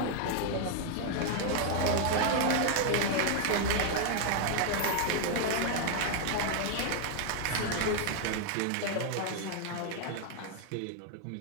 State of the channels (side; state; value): both; different; correlation 0.00